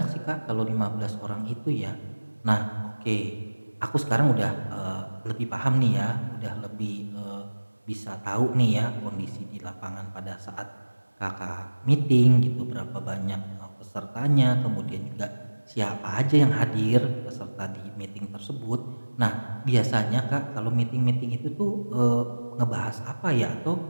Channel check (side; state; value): both; inverted; correlation -1.00